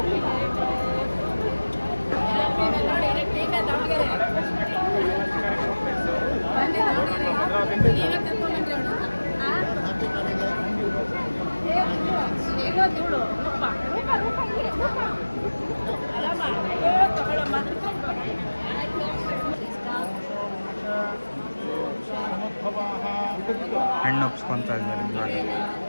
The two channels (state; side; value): inverted; both; correlation -1.00